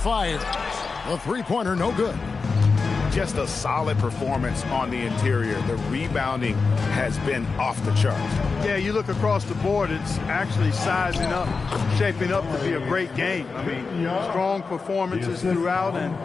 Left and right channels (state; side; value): quieter; right; 4.6 dB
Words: The three-pointer no good. Just a solid performance on the interior. The rebounding has been off the charts. Yeah, you look across the board, it's actually sizing up, shaping up to be a great game. I mean, strong performances throughout,